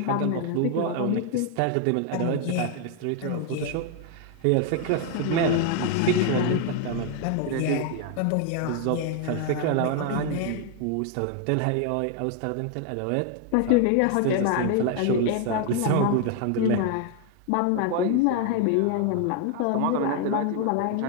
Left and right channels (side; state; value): both; different; correlation 0.00